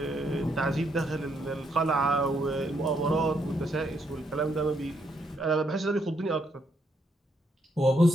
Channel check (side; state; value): both; normal; correlation 0.75